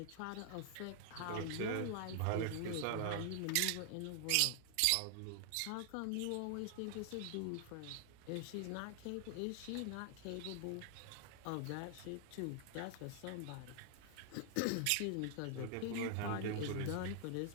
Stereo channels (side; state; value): both; different; correlation 0.00